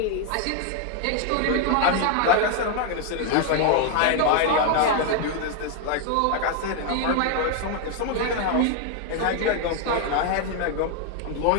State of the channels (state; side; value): different; both; correlation 0.01